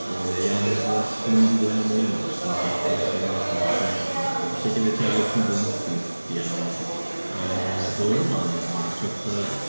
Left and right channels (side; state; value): both; inverted; correlation -1.00